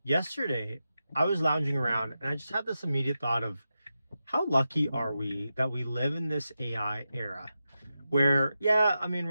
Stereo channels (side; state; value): both; inverted; correlation -0.90